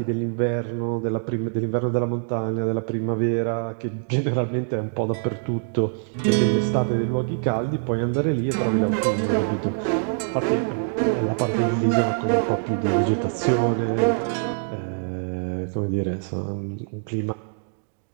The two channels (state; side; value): silent; left; digital silence